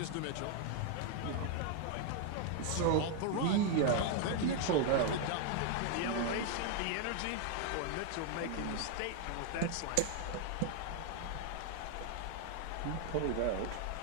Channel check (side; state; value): both; different; correlation 0.00